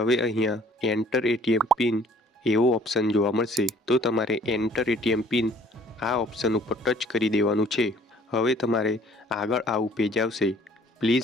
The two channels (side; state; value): both; normal; correlation 0.56